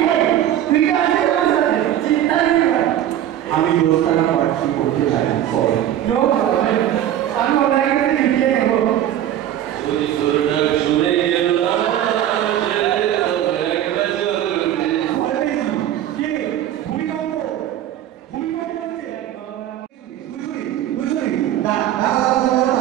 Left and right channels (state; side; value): quieter; left; 11.6 dB